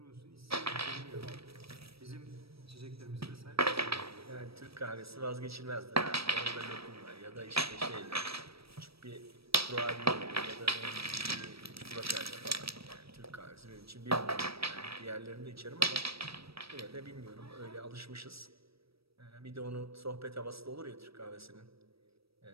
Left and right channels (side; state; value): left; late; 0.77 ms